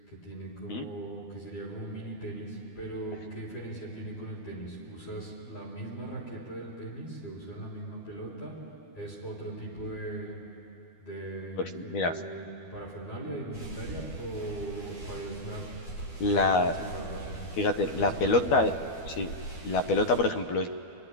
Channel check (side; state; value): right; late; 12 ms